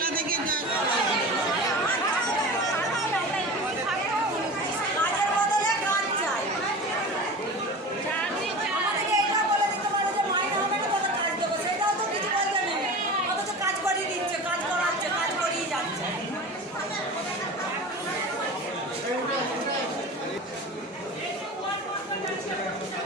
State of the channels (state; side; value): normal; both; correlation 0.33